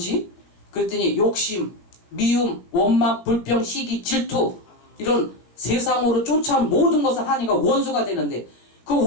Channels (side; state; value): right; late; 18 ms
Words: 그랬더니 욕심, 미움, 원망, 불평, 시기, 질투 이런 세상으로 쫓아온 모든 것을 하니까 원수가 되는데 그